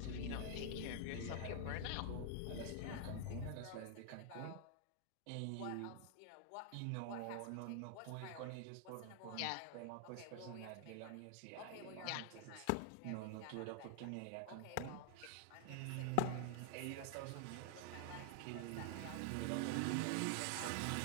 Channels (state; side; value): different; both; correlation 0.00